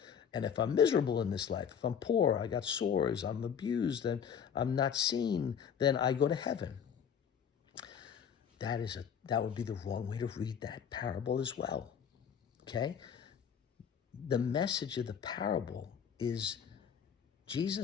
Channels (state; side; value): quieter; right; 7.8 dB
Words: And if I'm miserable in this life, if I'm poor, I got sores, I'm abused, and I'm not seen, then I go to heaven. That would be the wrong way to read that parable as well. Okay? The message of the parable is